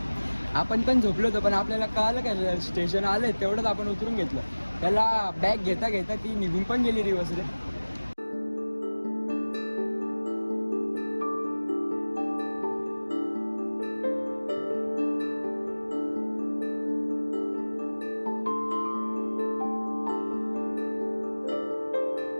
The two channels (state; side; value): inverted; both; correlation -1.00